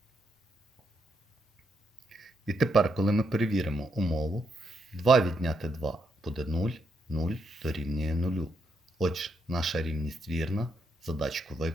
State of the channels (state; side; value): normal; both; correlation 0.79